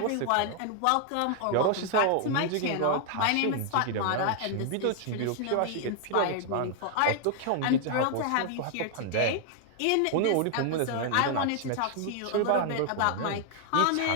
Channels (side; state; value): both; different; correlation 0.00